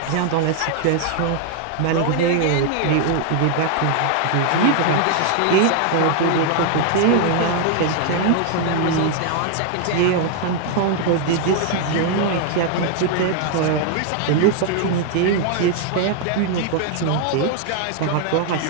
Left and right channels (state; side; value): different; both; correlation 0.00